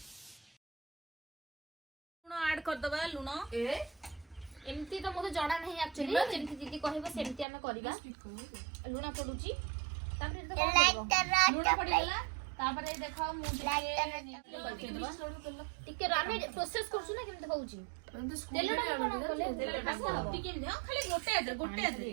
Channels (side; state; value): left; drops out; at 7.5 s